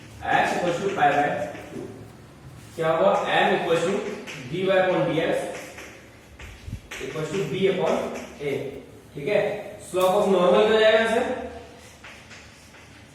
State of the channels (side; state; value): both; identical; correlation 1.00